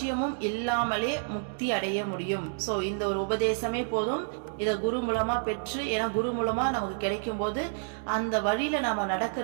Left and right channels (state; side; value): silent; left; digital silence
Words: இல்லாமலே முக்தி அடைய முடியும். சோ இந்த ஒரு உபதேசமே போதும். இத குரு மூலமா பெற்று, ஏன்னா குரு மூலமா நமக்கு கிடைக்கும் போது அந்த வழியில நாம